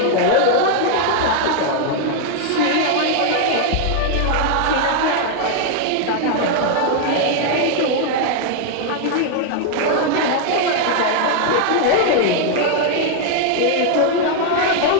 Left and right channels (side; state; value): both; different; correlation 0.00